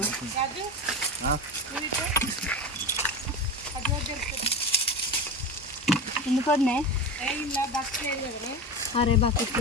ఎందుకు వద్దే? అరే బకెట్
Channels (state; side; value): normal; both; correlation 0.24